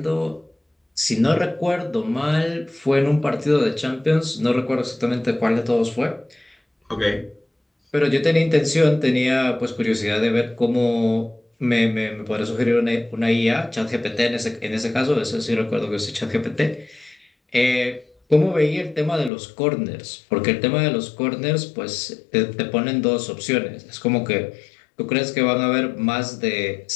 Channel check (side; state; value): right; drops out; at 19.3 s